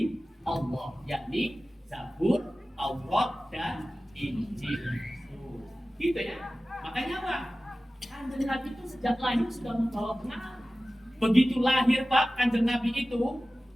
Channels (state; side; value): normal; both; correlation 0.96